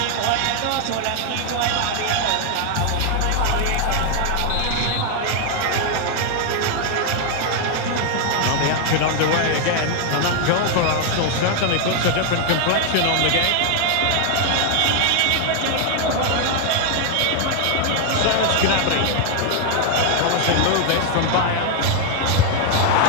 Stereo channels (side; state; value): both; different; correlation 0.00